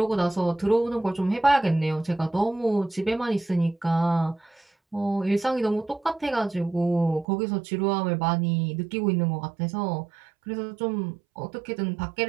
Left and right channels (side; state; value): left; drops out; at 7.2 s